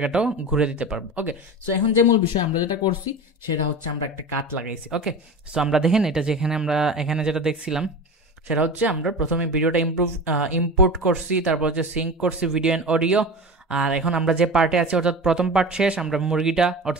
ঘুরে দিতে পারবো। ওকে, সো এখন যে মূল বিষয় আমরা যেটা করছি সেটা হচ্ছে আমরা একটা কাট লাগাইছি। ওকে, সো আমরা দেখেন এটা যেখানে আমরা এখানে যেটা দেখছিলাম সেটা হচ্ছে আমরা প্রথমে ভিডিওটা ইম্পোর্ট করছি, তারপর হচ্ছে সিঙ্ক করছি ভিডিও অ্যান্ড অডিও। আর এখন আমরা যে পার্টে আছি, অর্থাৎ প্রথম পার্ট শেষ, আমরা মুরগিটা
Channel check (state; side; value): normal; both; correlation 0.30